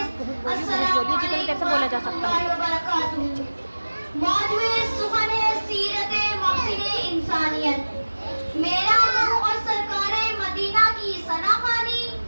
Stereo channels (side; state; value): both; inverted; correlation -1.00